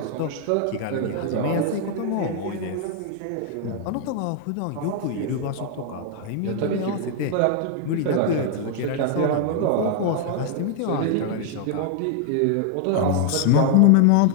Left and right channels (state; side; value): different; both; correlation 0.00